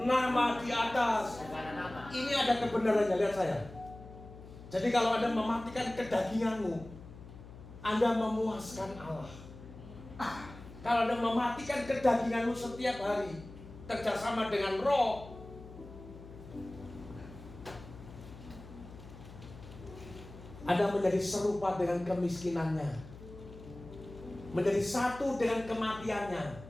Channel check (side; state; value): left; noise; hum, 16 dB below the sound